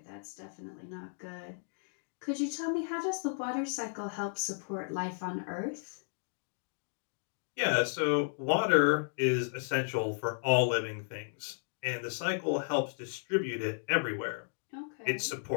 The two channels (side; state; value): right; silent; digital silence